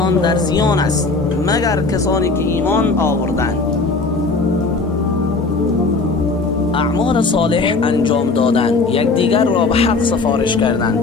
در زیان است مگر کسانی که ایمان آوردند، اعمال صالح انجام دادند، یکدیگر را به حق سفارش کردند،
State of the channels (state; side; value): quieter; right; 3.8 dB